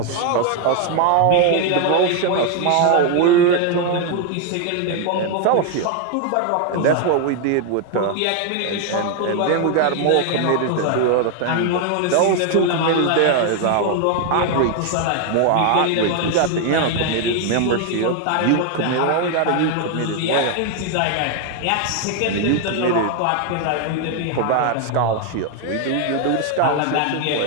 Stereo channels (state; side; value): different; both; correlation 0.01